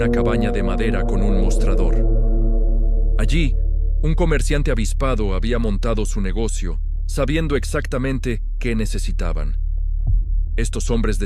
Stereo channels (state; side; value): identical; both; correlation 1.00